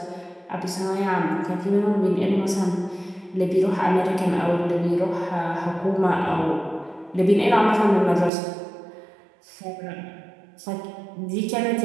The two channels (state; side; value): drops out; left; at 8.3 s